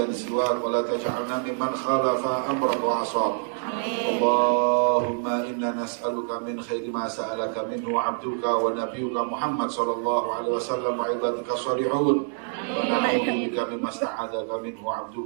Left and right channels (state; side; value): silent; left; 61 dB below the other